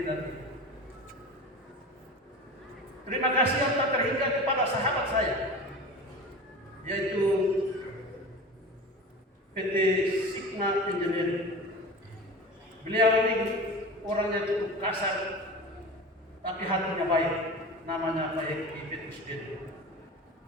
dan Ibu. Terima kasih yang tak terhingga kepada sahabat saya, yaitu PT Sigma Engineering. Beliau ini orangnya cukup kasar, tapi hatinya baik. Namanya Pak Eki Petrus Gede.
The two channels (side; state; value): both; normal; correlation 0.33